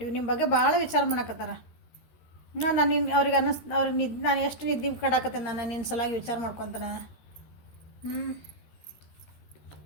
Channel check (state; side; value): late; right; 13 ms